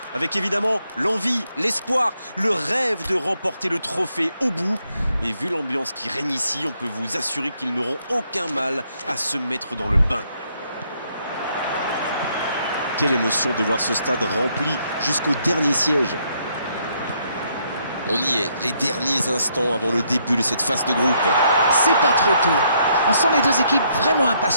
Avec évidemment l'envie, l'espoir, le rêve de remporter le trophée au bout. Et vu l'ambiance qui règne ici, on peut vous assurer qu'ils n'auront aucun mal à se mettre dans le bain. Quelle émotion de voir ce stade rempli jusqu'au dernier siège. On y est, les derniers instants avant le début de cette phase de groupe. C'est pas trop tôt. On sent les deux équipes vraiment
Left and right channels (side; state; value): both; inverted; correlation -0.73